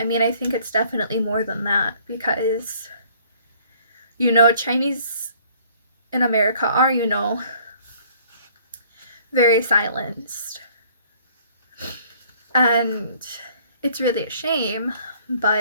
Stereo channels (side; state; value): both; inverted; correlation -0.58